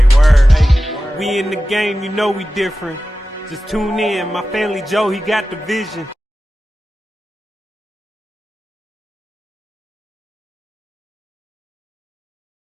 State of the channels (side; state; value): both; normal; correlation 0.94